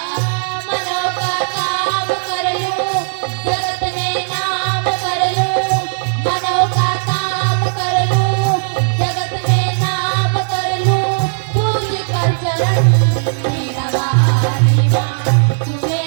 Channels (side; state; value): left; silent; digital silence